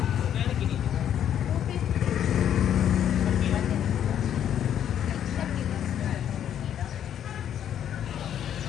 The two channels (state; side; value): quieter; right; 9.9 dB